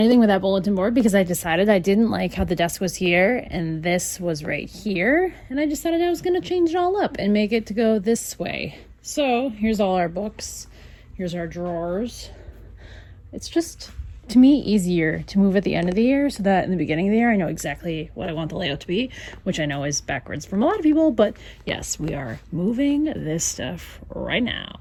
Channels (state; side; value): identical; both; correlation 1.00